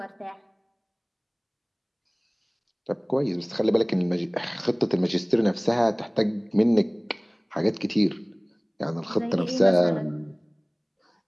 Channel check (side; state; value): both; identical; correlation 1.00